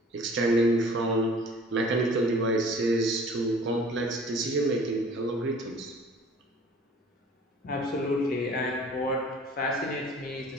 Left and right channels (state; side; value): normal; both; correlation 0.49